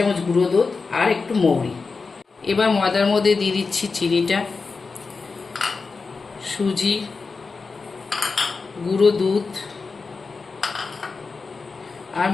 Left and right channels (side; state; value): right; quieter; 4.4 dB